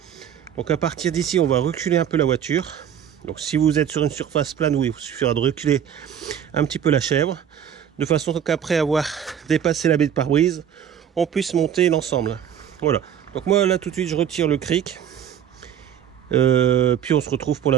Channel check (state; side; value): quieter; left; 9.1 dB